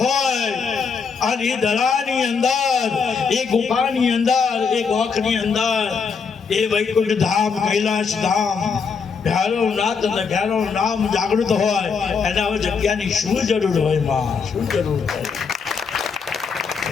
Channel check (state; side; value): quieter; right; 5.6 dB